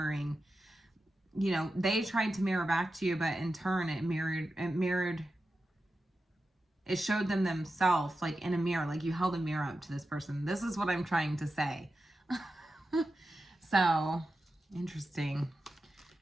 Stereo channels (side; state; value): both; normal; correlation 0.91